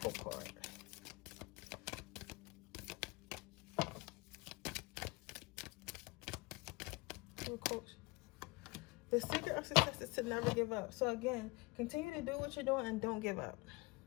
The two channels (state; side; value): quieter; right; 24.9 dB